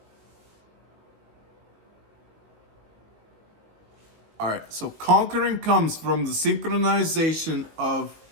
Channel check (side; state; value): left; late; 19 ms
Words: all right, so conquering comes from the synchronization of